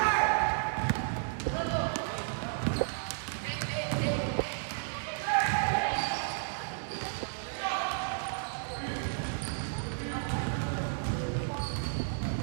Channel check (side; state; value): left; silent; digital silence